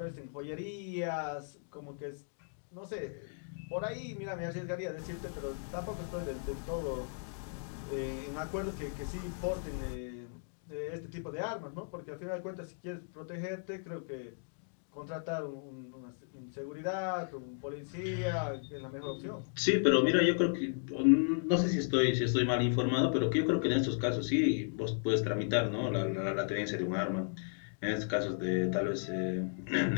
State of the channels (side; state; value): right; silent; digital silence